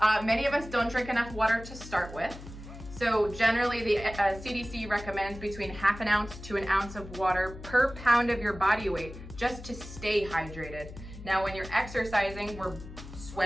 many of us don't drink enough water to start with. So generally the CDC recommends between half an ounce to an ounce of water per pound of your body weight just to stay hydrated. Now, when you're exercising, we're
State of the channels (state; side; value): noise; left; hum, 14 dB below the sound